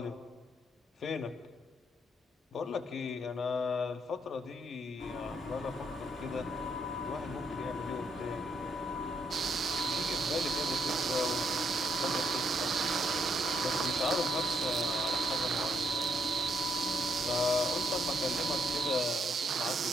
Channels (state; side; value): normal; both; correlation 0.73